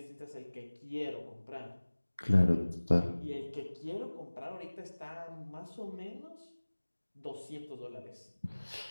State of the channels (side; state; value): both; inverted; correlation -1.00